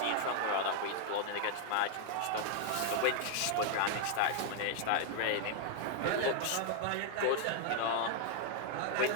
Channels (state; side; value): different; both; correlation 0.00